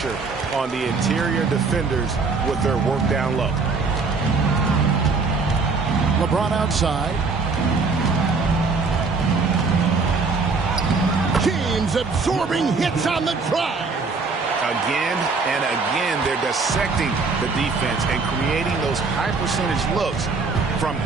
on the interior defenders with their work down low. LeBron outside. James absorbing hits on the drive. Again and again, they're dissecting the defense and creating those high-percentage looks from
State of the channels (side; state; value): left; quieter; 4.4 dB